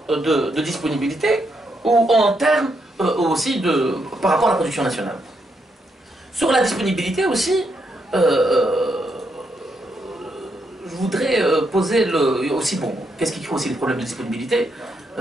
de disponibilité ou en termes aussi par rapport à la production nationale. Sur la disponibilité aussi, je voudrais poser aussi, bon, qu'est-ce qui crée aussi les problèmes de disponibilité?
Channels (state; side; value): normal; both; correlation 0.79